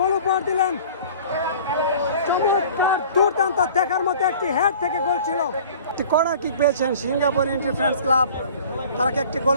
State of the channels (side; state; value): both; inverted; correlation -0.45